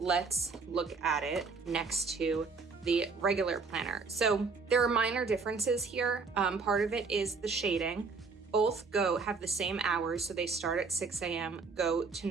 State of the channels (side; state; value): left; quieter; 4.6 dB